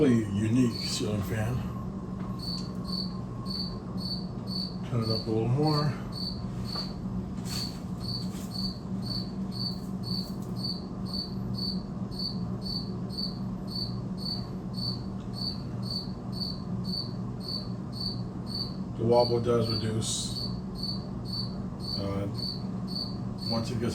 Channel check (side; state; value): both; identical; correlation 1.00